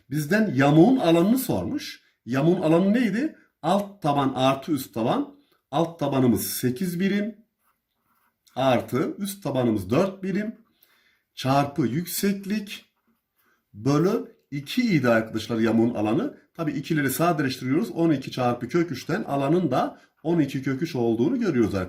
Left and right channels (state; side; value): identical; both; correlation 1.00